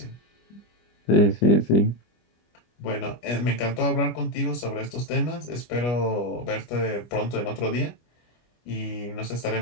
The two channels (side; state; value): right; late; 25 ms